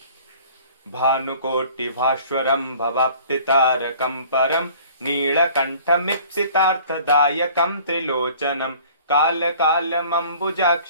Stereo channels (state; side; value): inverted; both; correlation -0.50